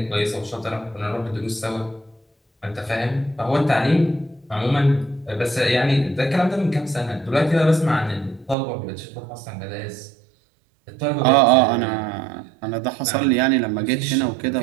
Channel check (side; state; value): left; drops out; at 8.6 s